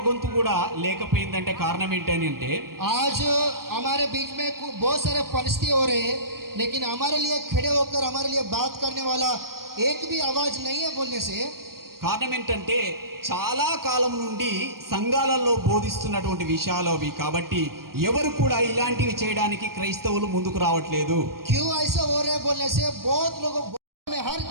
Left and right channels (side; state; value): left; late; 0.93 ms